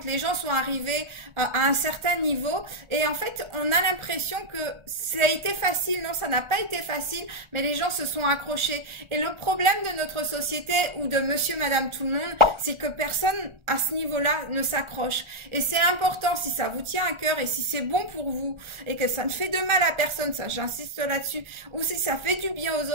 les gens sont arrivés à un certain niveau et en fait, on a l'impression que ça a été facile. Non, ça n'a pas été facile, mais les gens se sont accrochés. Et le problème de notre société ou de monsieur, madame, tout le monde, c'est que personne à ce niveau-là ne s'accroche. Et c'est important, si ça vous tient à cœur et si c'est bon pour vous et que ça ne fait de mal à personne, ça j'insiste là-dessus, ou si ça fait du bien aux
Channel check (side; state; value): left; late; 1.3 ms